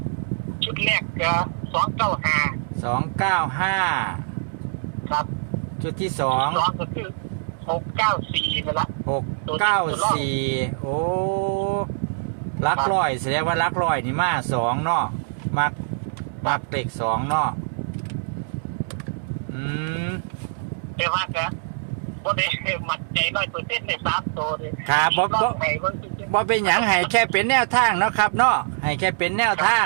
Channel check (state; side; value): silent; left; digital silence